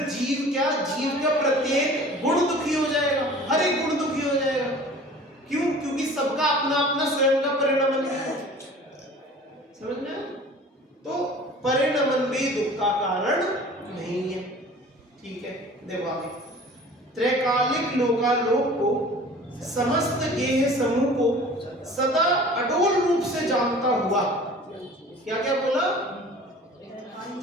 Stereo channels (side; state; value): both; normal; correlation 0.45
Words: जीव क्या, जीव का प्रत्येक गुण दुखी हो जाएगा, हर एक गुण दुखी हो जाएगा। क्यों? क्योंकि सबका अपना अपना स्वयं का परिणमन है। समझ में? तो परिणमन भी दुख का कारण नहीं है। ठीक है, देखो आगे। त्रैकालिक लोकालोक को समस्त गेह समूह को सदा अडोल रूप से जानता हुआ, क्या क्या बोला?